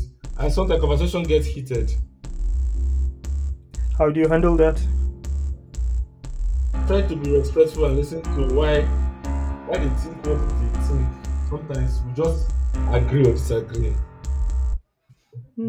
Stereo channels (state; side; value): identical; both; correlation 1.00